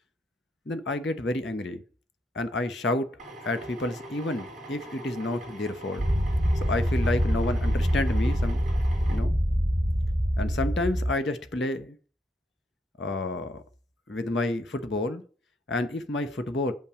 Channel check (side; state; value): both; normal; correlation 0.79